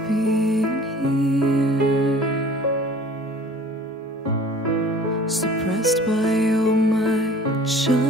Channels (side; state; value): both; normal; correlation 0.47